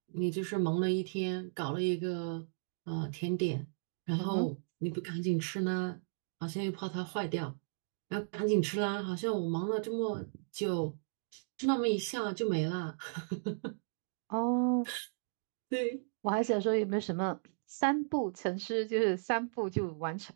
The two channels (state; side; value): silent; left; digital silence